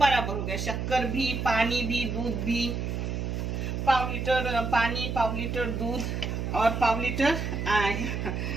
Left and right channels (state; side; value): noise; right; hum, 3 dB below the sound